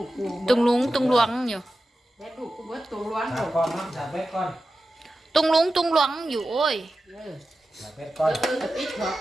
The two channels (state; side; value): normal; both; correlation 0.93